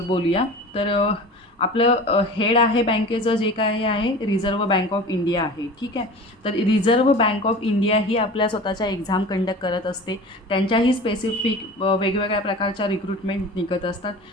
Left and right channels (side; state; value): both; normal; correlation 0.37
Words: बोलूया. तर आपलं हेड आहे बँकेचं जे काय आहे रिझर्व्ह बँक ऑफ इंडिया आहे, ठीक आहे. तर रिझर्व्ह बँक ऑफ इंडिया ही आपल्या स्वतःच्या एक्झाम कंडक्ट करत असते. त्यांच्याही स्पेसिफिक वेगवेगळ्या प्रकारच्या रिक्रुटमेंट निघत असतात.